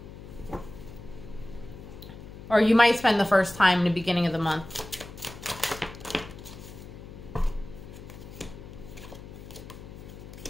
Or you might spend the first time in the beginning of the month.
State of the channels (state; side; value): noise; left; hum, 14 dB below the sound